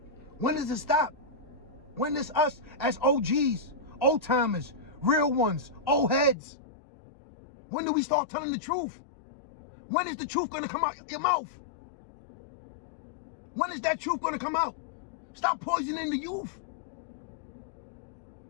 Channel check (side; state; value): right; drops out; at 6.4 s